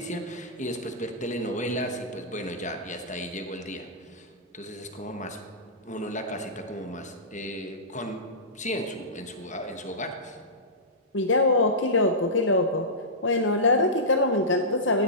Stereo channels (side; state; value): both; normal; correlation -0.17